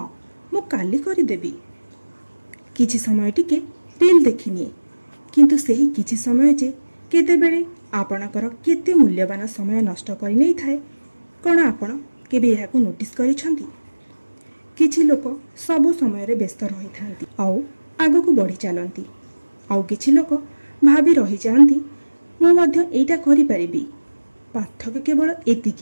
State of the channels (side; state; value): both; inverted; correlation -1.00